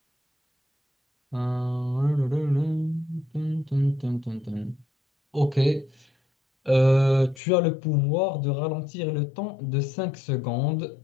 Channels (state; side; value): drops out; right; at 7.4 s